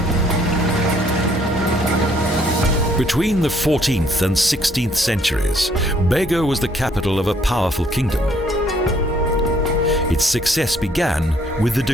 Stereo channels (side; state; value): both; normal; correlation 0.64